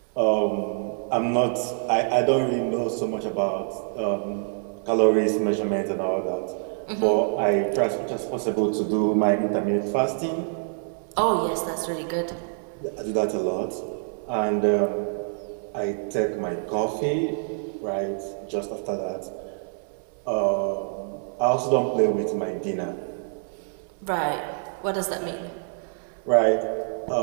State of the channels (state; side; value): silent; left; 61 dB below the other